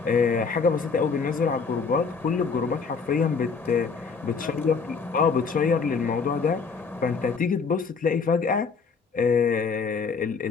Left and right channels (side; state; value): right; quieter; 5.2 dB